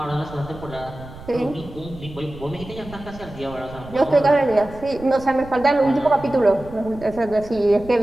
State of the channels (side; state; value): right; noise; rumble, 16 dB below the sound